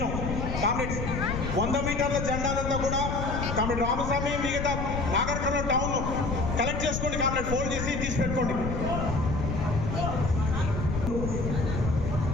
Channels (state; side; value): noise; left; rumble, 3 dB below the sound